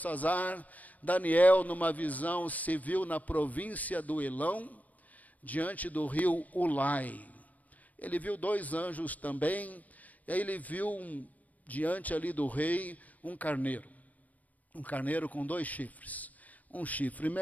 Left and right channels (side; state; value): right; late; 0.074 ms